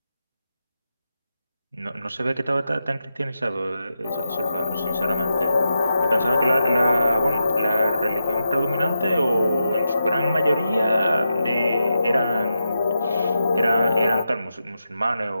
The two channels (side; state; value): both; inverted; correlation -0.87